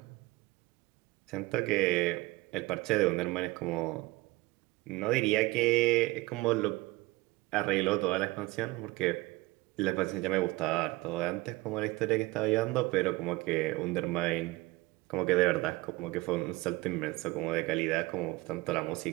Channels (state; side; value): quieter; left; 21.4 dB